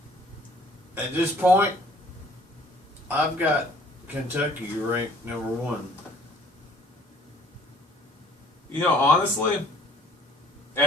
at this point, I've got Kentucky ranked number 1. You know, honestly,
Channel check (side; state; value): both; normal; correlation 0.56